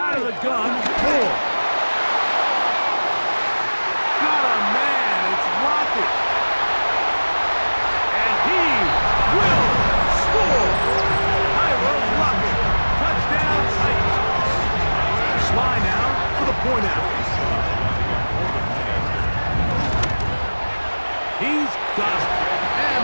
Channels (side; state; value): both; inverted; correlation -1.00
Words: Out of the gun, Moore. Got a man, it's Lockett. And he will score. Tyler Lockett, touchdown Titans. Sly now for the point out. He's got it. And